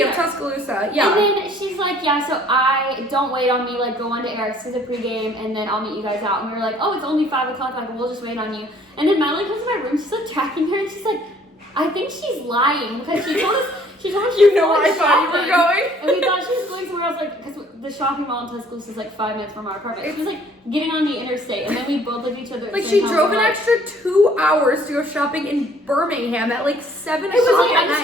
of Tuscaloosa. Yeah. And then she's like, yeah, so I don't wait on me, like go on to Eric's for the pregame, and then I'll meet you guys out. And we were like, oh, it's only 5 o'clock, like we'll just wait on you. And then Madeline comes to my room, she's like tracking her, and she's like, I think she's lying because she told us You know where I thought you were going. And we thought she was going somewhere else, like, because the shopping mall in Tuscaloosa is like 5 minutes from our apartment. She was like getting on the interstate, and then we both looked at each other. at the Like same she time, drove we're an like, extra 2 hours to go shopping in Birmingham at like 7 It was o'clock like, I at just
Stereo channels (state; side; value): normal; both; correlation 0.58